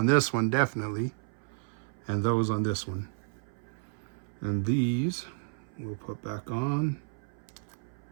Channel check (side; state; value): left; silent; 57 dB below the other